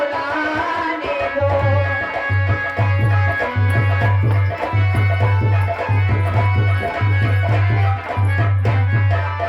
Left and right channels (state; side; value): identical; both; correlation 1.00